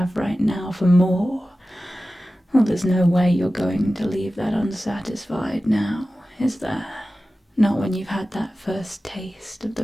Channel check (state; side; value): normal; both; correlation 0.95